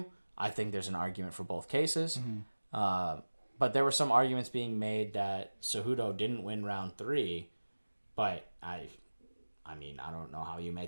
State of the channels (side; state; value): both; inverted; correlation -1.00